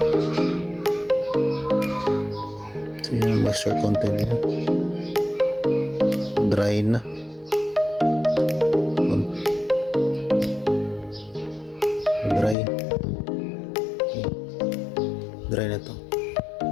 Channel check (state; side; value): drops out; right; at 12.6 s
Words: So yung moisture content niya, dry na. Dry. Okay. Dry na to.